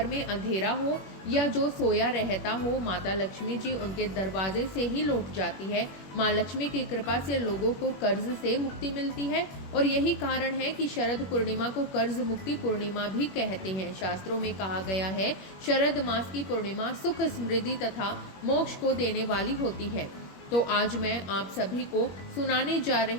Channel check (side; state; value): right; late; 21 ms